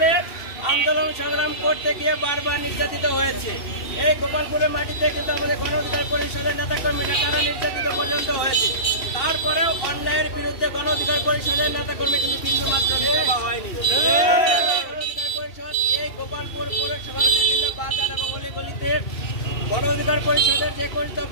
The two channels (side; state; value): right; late; 2.7 ms